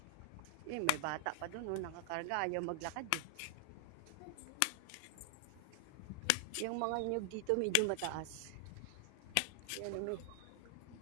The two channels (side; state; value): both; different; correlation 0.00